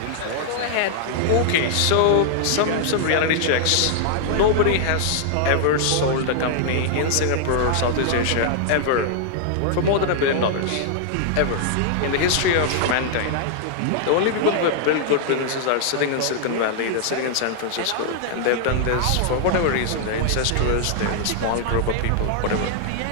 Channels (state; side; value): different; both; correlation -0.01